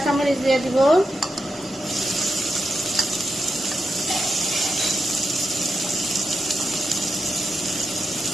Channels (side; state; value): both; normal; correlation 0.86